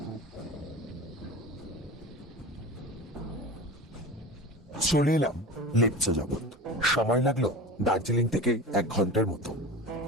চলে এলাম লিপচা জগৎ। সময় লাগলো দার্জিলিং থেকে 1 ঘন্টার মতো।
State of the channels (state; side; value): normal; both; correlation 0.32